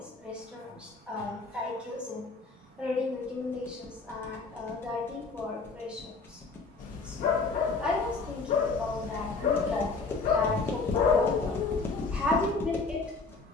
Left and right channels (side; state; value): right; quieter; 4.2 dB